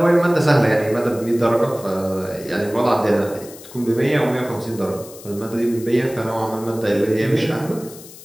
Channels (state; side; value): noise; left; hiss, 18 dB below the sound